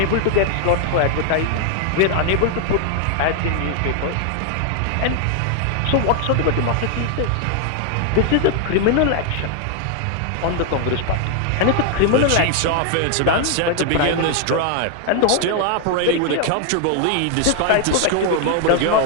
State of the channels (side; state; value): both; different; correlation 0.00